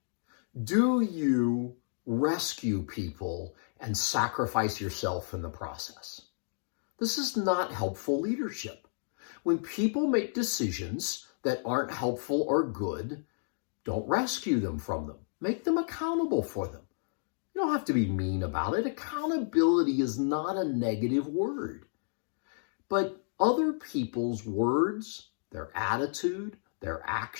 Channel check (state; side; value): silent; right; digital silence